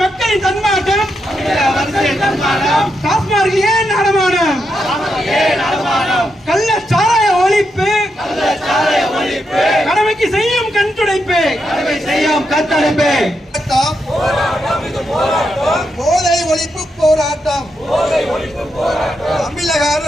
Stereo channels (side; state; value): both; normal; correlation 0.83